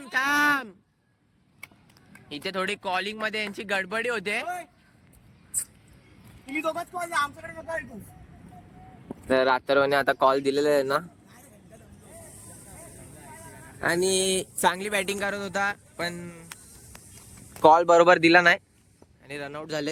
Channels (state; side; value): identical; both; correlation 1.00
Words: इथे थोडी कॉलिंग मध्ये यांची गडबडी होते. तर अथर्वने आता कॉल दिलेला आहे ना, आणि चांगली बॅटिंग करत होता पण कॉल बरोबर दिला नाही आणि रनआउट